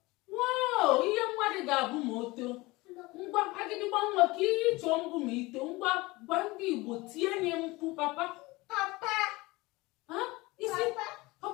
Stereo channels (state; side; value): quieter; right; 22.0 dB